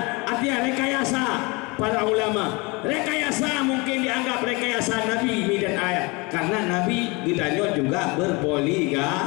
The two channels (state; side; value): quieter; right; 26.9 dB